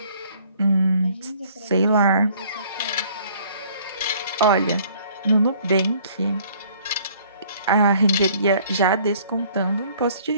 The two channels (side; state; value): both; inverted; correlation -0.58